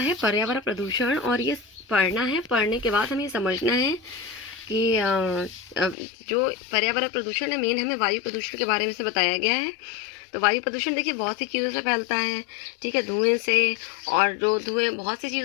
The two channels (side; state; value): right; drops out; at 6.0 s